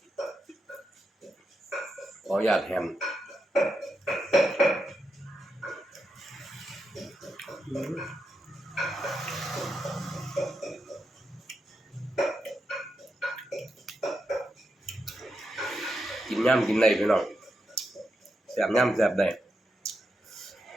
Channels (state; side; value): normal; both; correlation 0.85